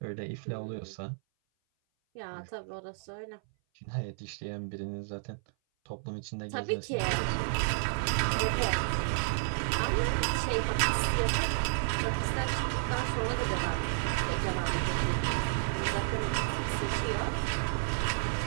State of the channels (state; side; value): silent; left; 56 dB below the other